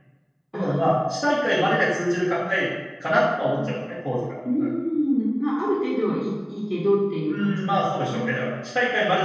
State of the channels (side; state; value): both; identical; correlation 1.00